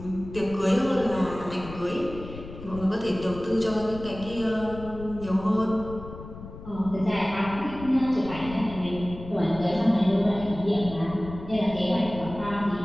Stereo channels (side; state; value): left; noise; rumble, 13 dB below the sound